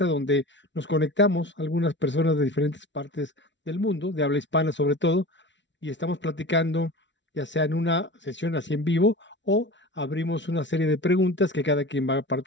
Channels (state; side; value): late; right; 0.53 ms